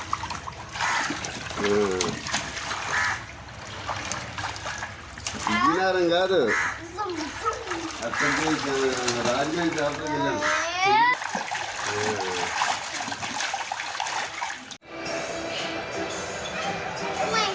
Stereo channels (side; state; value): both; identical; correlation 1.00